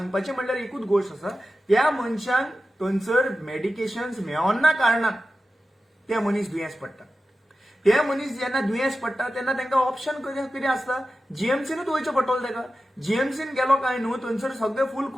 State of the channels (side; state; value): both; normal; correlation 0.93